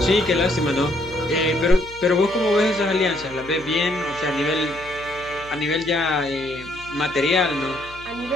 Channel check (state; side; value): noise; left; hum, 20 dB below the sound